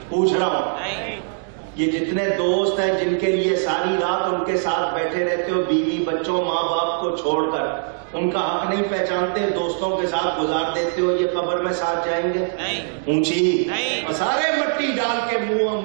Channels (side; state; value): left; silent; digital silence